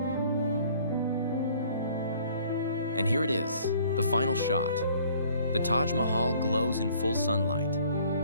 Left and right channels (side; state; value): both; inverted; correlation -0.56